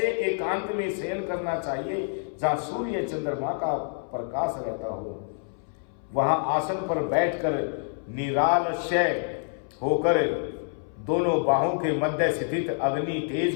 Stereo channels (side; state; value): right; silent; 60 dB below the other